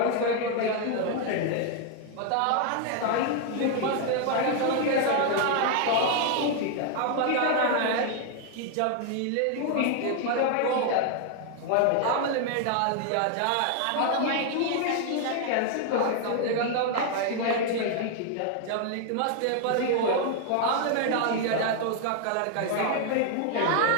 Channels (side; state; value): both; different; correlation 0.00